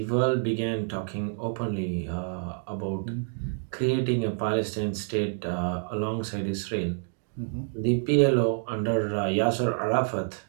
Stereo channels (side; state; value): left; silent; digital silence